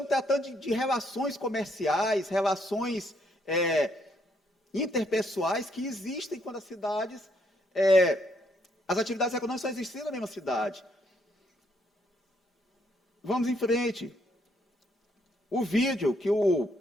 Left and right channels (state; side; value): normal; both; correlation 0.72